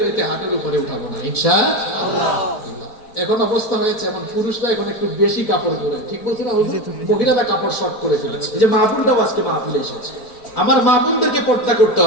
হাঁটুর উপরে উঠাবো না ইনশাআল্লাহ। এখন অবস্থা হয়েছে এমন, পুরুষরা এখন একটু বেশি কাপড় পরে। ঠিক বলছি না? মহিলারা কাপড় শর্ট করে ফেলেছে। এই যে মা বোনটাও আজকে মাহফিলে এসেছে। আমার মা বোনদেরকে পর্দা করতে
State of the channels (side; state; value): right; late; 4.6 ms